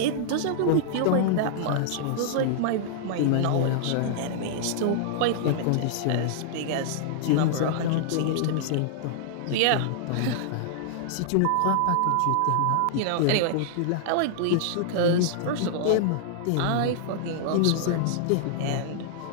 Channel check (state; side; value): different; both; correlation -0.01